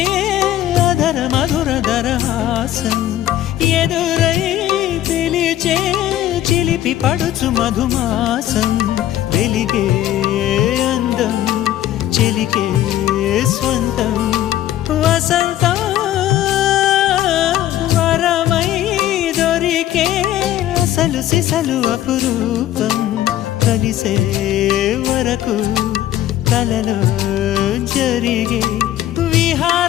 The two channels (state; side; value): quieter; right; 12.8 dB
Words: అధర మధుర దరహాసం ఎదురై పిలిచే చిలిపి పడుచు మధుమాసం వెలిగే అందం చెలికే స్వంతం వసంతం వరమై దొరికే అసలు సిసలు అపురూపం కలిసే వరకు కలలో జరిగే